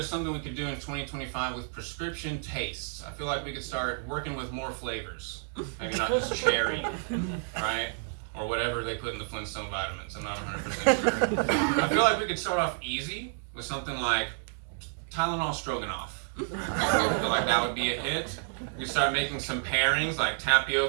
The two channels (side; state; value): left; silent; 58 dB below the other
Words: something we could do in 2025 with prescription tastes. I feel like we could start working with more flavors, maybe not just cherry, right? Or whatever they put in the Flintstone vitamins. I'm not 100% sure. I feel like we could start off easy with something like Tylenol Stroganoff. I feel like that would be a hit. We could start making some pairings like